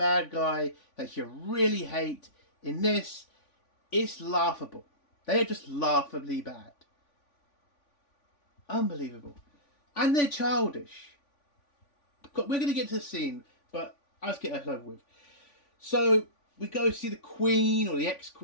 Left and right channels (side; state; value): right; late; 3.5 ms